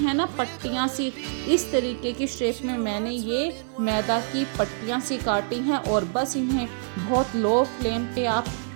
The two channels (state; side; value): silent; left; 61 dB below the other